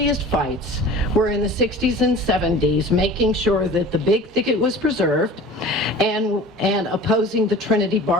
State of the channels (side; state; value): both; normal; correlation 0.41